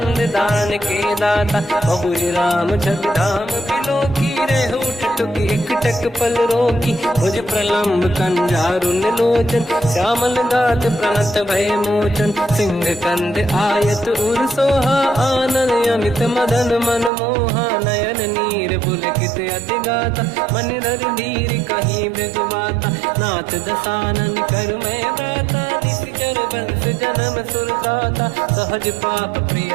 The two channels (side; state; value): left; drops out; at 17.1 s